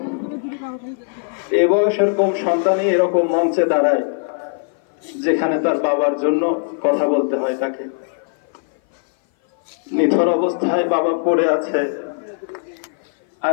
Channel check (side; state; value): right; silent; 58 dB below the other